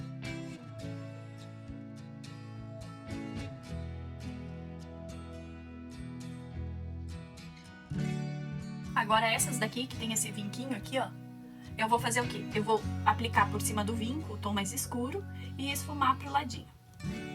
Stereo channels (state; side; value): identical; both; correlation 1.00